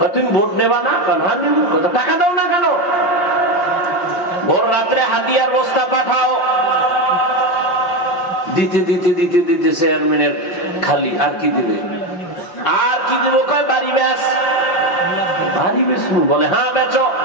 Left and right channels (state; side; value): late; right; 5.6 ms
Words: তুমি ভোট নেবা না? টাকা দাও না কেন? ভোর রাত্রে হাতিয়ার বস্তা পাঠাও, দিতে দিতে দিতে দিতে চেয়ারম্যানের খালি। আর কি দিবে? আর কি দিব? কয় বাড়ি বেচ। বাড়ি বেচবো? বলে হ্যাঁ বেচো।